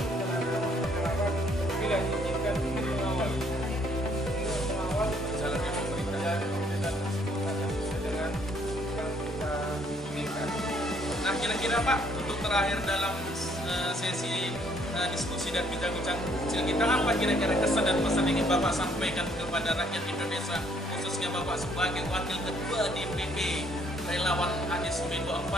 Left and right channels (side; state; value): both; normal; correlation 0.66